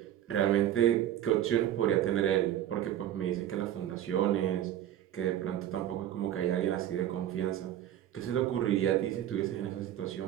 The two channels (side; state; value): left; quieter; 11.7 dB